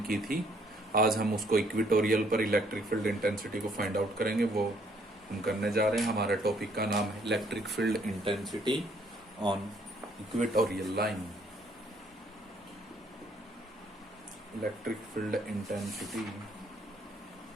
की थी। आज हम उसको इक्वेटोरियल पर इलेक्ट्रिक फील्ड इंटेंसिटी को फाइंड आउट करेंगे। वो हम करने जा रहे हैं। हमारे टॉपिक का नाम है electric field intensity on equatorial line. Electric field intensity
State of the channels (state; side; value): normal; both; correlation 0.65